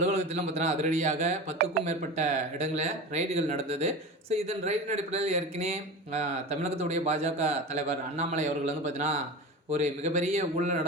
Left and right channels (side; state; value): both; normal; correlation 0.29